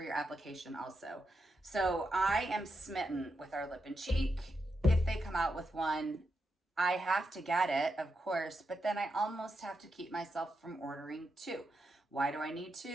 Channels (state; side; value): normal; both; correlation 0.85